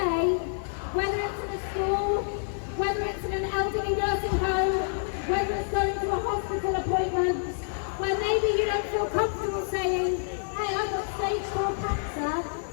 whether it's in a school, whether it's in an elderly nursing home, whether it's going to a hospital appointment, where maybe you don't feel comfortable saying, hey, I've got stage 4 cancer,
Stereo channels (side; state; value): right; silent; 59 dB below the other